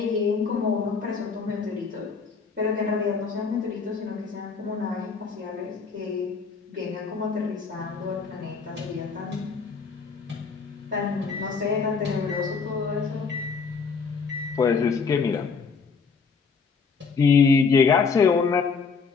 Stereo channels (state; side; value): quieter; right; 5.2 dB